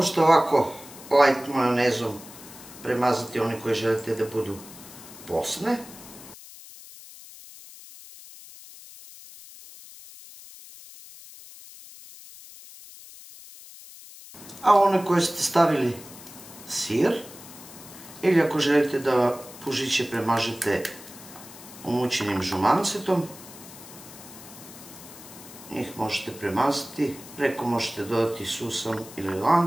ovako light majonezom premazati one koje želite da budu posne. A one koje ste stavili sir, ili ako želite da pužiće premažete umućenim žumancetom, njih možete premazati, preko možete dodati susan ili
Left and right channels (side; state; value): left; noise; hiss, 17 dB below the sound